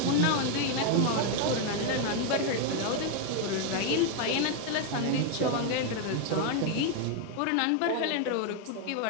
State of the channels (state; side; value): different; both; correlation 0.01